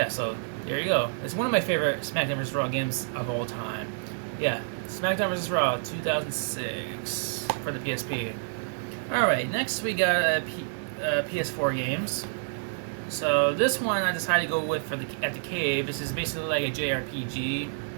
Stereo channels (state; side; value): silent; left; digital silence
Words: so there you go. It's one of my favorite SmackDown vs. Raw games of all time. Yeah, SmackDown vs. Raw 2006 for the PSP. Alright, next we got PS4 games. So this one I decided to go with for at the cave. This is basically like a JRPG.